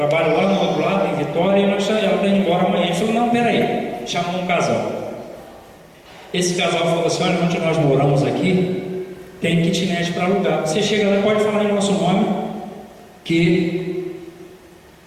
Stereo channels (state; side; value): identical; both; correlation 1.00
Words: lá no outro lado, em Vitória, e ela está indo embora amanhã. Ele falou, não, peraí, chamou um casal. Esse casal falou assim, olha, onde nós moramos aqui, tem kitnet para alugar. Você chega lá, pode falar em nosso nome, que